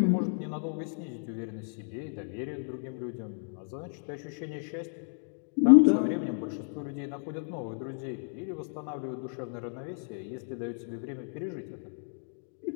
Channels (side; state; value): right; silent; 56 dB below the other